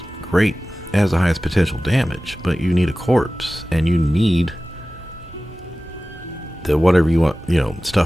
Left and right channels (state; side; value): normal; both; correlation 0.96